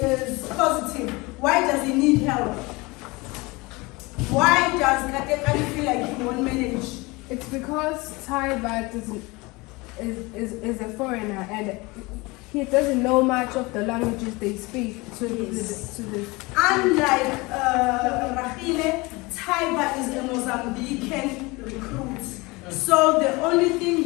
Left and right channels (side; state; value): right; quieter; 24.1 dB